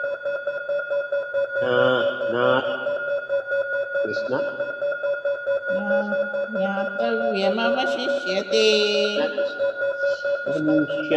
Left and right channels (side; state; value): both; identical; correlation 1.00